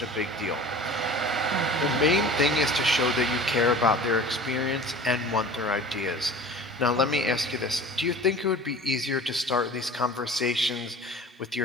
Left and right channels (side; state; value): both; normal; correlation 0.41